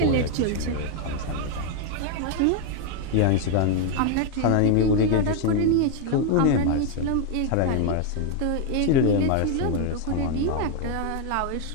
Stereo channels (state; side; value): different; both; correlation 0.01